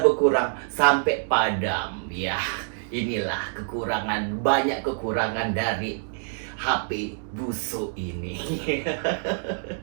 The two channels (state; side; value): silent; left; digital silence